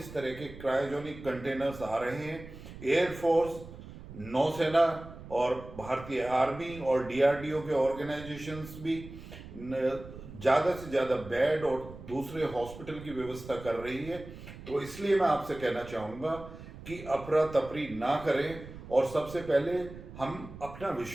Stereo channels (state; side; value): noise; right; rumble, 15 dB below the sound